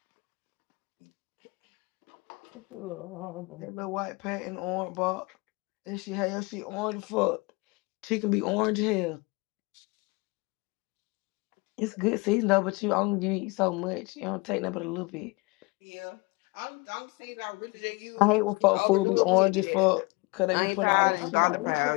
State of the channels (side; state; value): right; quieter; 25.7 dB